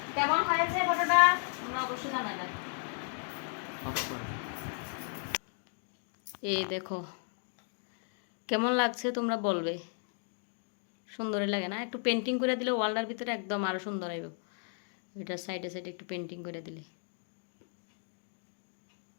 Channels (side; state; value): right; silent; 55 dB below the other